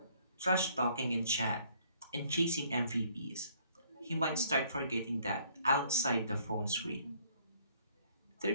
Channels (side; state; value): both; inverted; correlation -0.63